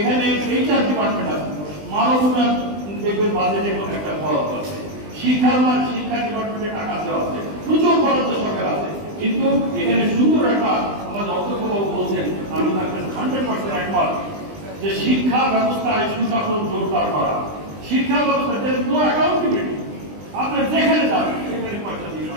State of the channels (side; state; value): left; late; 20 ms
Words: এইচআর ডিপার্টমেন্ট আছে, মানব উন্নয়ন দেখবেন বাজেটে একটা খরচ আছে, শিক্ষা ডিপার্টমেন্টে টাকা দেওয়া আছে, প্রচুর বরাদ্দ সরকার আছে, কিন্তু এখানে সুন্দর একটা আমাদের অধ্যক্ষবাবু বলছেন, আমি তাকে 100% একমত, যে শিক্ষা ব্যবস্থায় সুশাসন জোরদার করা। শিক্ষা ব্যবস্থা নো অ্যাকাউন্টেবিলিটি, আপনি যেখানে যাবেন সেখানে পয়সা দিয়ে